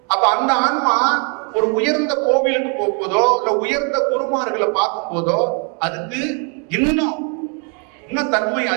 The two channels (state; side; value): quieter; left; 37.4 dB